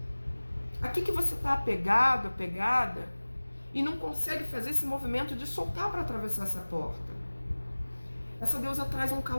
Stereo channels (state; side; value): inverted; both; correlation -1.00